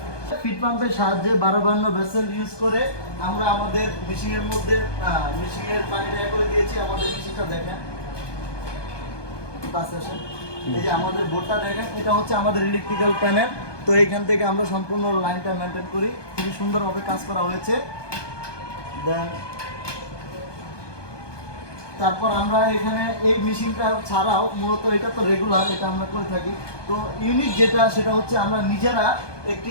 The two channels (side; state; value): right; late; 1.2 ms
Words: ফিট পাম্পের সাহায্যে 12 ভেসেল ইউজ করে আমরা আমাদের মেশিনের মধ্যে মেশিনের পানি দেয়া করে দিয়েছি। আমাদের মেশিনটা দেখেন, এই যে আমাদের বোর্ডটা দেখেন, এটা হচ্ছে আমাদের ইলেকট্রিক্যাল প্যানেল। তো এইখান থেকে আমরা সম্পূর্ণ লাইনটা মেনটেন করি, খুবই সুন্দরভাবে কাজ করা হয়েছে। দেন তারপর আমরা এখানে এই মেশিনটা ছাড়াও মূলত এটা তো রেগুলার, এটা আমরা করে থাকি। তো ইউনিক যেটা সেটা হচ্ছে আমরা নিজেরা